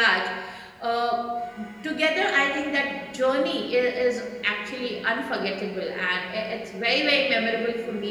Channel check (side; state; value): both; identical; correlation 1.00